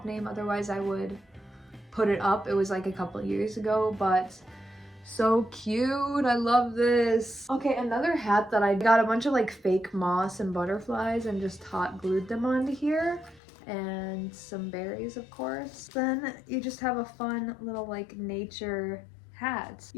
name, otherwise I would put it up. It was like a couple years ago, but so cute. I love this. Okay, another hat that I got a bunch of like fake moss and butterflies and just hot glued them onto here. And some berries, of course. Then you just have a fun little like nature hat.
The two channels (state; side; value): drops out; right; at 13.4 s